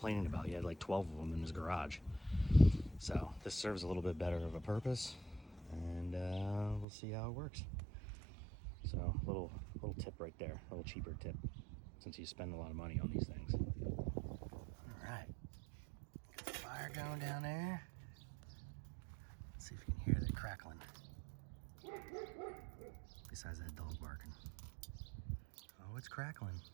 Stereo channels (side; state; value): left; drops out; at 6.9 s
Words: about. He had like 12 of them in his garage. So this serves a little bit better of a purpose, and we'll see how it works. So little tip right there, a little cheaper tip, since you spend a lot of money on these things. All right, got the fire going down there. Let's see if you can hear the crackling. Besides that dog barking. Oh, it's crackling.